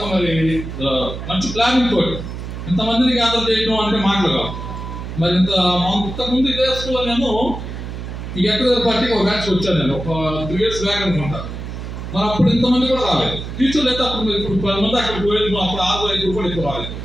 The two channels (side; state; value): right; noise; hum, 8 dB below the sound